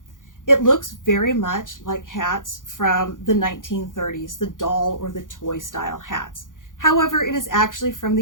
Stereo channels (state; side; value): late; right; 0.88 ms